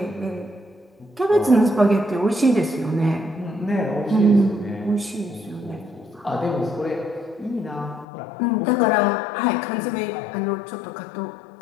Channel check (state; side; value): drops out; right; at 8.1 s